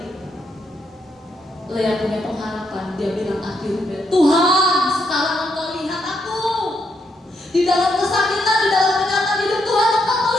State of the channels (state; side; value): normal; both; correlation 0.77